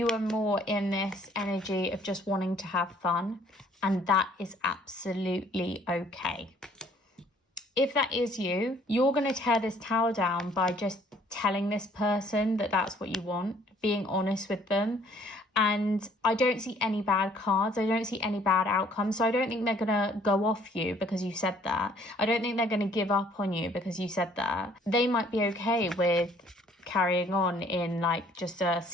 are more in this energy of just wanting to have fun. And that is absolutely okay. If that is you, you're going to tear this tower down by just telling this person that that's what you want, being honest with them. And I don't see any bad cards. I don't see any bad outcomes. So I don't think they're going to go off you because you said that. I don't think they're going to give up on you because you said that. They might be okay with carrying on in like just a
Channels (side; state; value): both; normal; correlation 0.59